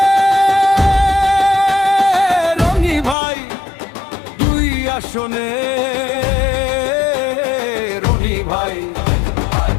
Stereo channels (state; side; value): drops out; right; at 3.2 s